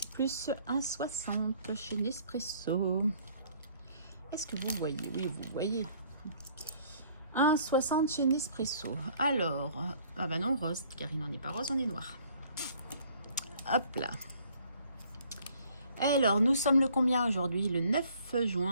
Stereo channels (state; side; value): inverted; both; correlation -0.59